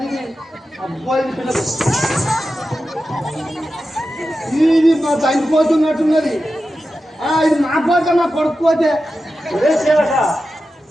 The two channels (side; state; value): both; normal; correlation 0.92